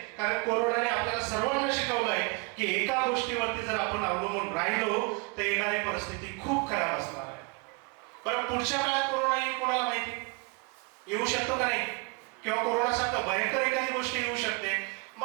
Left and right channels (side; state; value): left; quieter; 30.6 dB